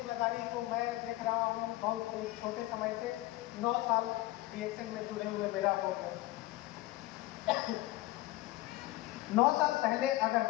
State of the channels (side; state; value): right; quieter; 18.0 dB